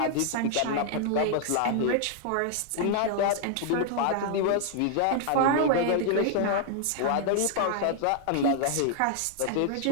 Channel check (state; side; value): different; both; correlation -0.01